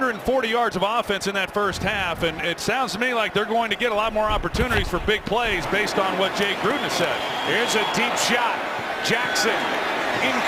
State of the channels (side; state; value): both; identical; correlation 1.00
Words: yards of offense in that first half, and it sounds to me like they're going to get a lot more opportunities for big plays based on what Jay Gruden has said. Here's a deep shot. Jackson